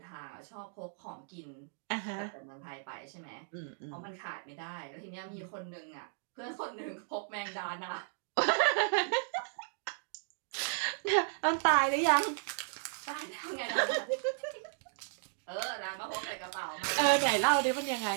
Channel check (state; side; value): silent; left; digital silence